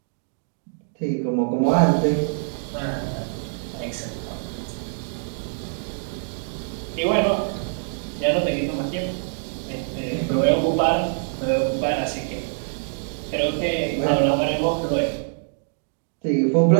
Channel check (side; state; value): left; silent; 62 dB below the other